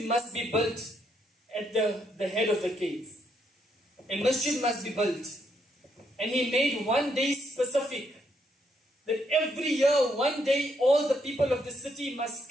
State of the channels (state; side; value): normal; both; correlation 0.75